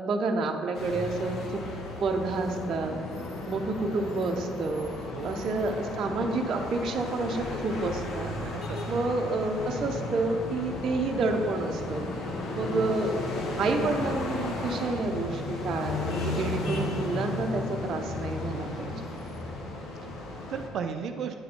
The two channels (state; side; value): normal; both; correlation 0.67